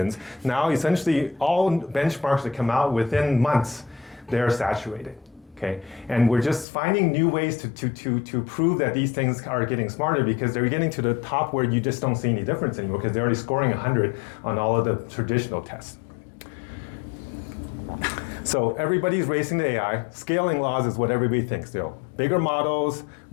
Now, essentially, all benchmarks that come out within months, they're saturated. Okay, and we're just finding new ways to prove that these things are getting smarter because they're getting to the top where you just don't see any difference anymore because they're already scoring 100 on all of the traditional tests. So everybody's racing to AI. Scaling laws is what everybody thinks. Bigger models,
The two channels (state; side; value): drops out; right; at 6.7 s